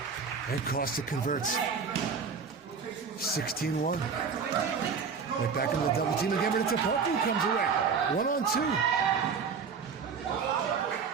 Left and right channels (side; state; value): left; quieter; 5.8 dB